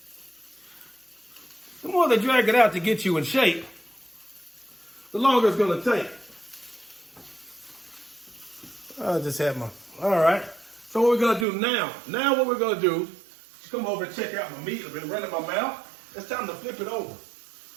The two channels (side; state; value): left; drops out; at 11.5 s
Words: the longer it's going to take. I just had all right. So what we're going to do now what we're going to do is come over and check out my meat. I've been running my mouth. It's time to flip it over.